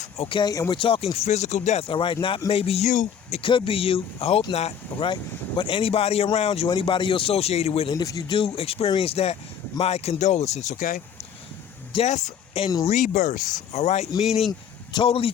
okay? And we're talking physical death, all right? Not maybe you. It could be you. I hope not, all right? But anybody around you, anybody you're associated with, and if you do experience that, my condolences, okay? Death and rebirth, all right? Meaning totally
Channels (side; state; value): right; quieter; 7.9 dB